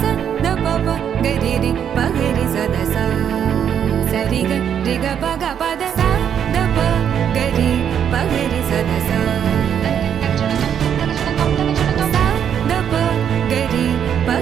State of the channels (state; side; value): quieter; left; 8.7 dB